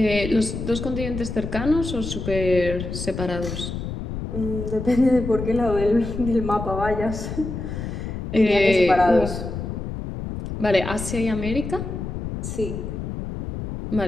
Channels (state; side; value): noise; left; rumble, 6 dB below the sound